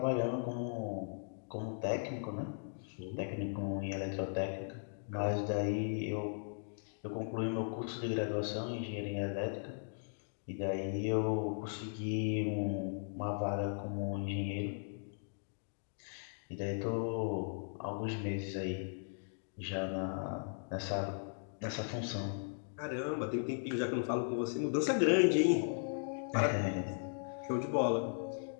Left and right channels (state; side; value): silent; right; digital silence